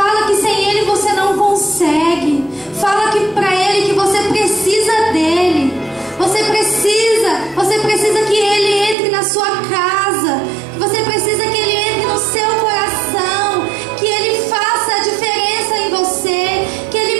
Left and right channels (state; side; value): drops out; left; at 9.0 s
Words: que sem Ele você não consegue. Fala que